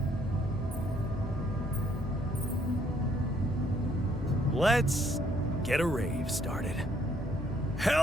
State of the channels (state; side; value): normal; both; correlation 0.67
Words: Let's get a rave started.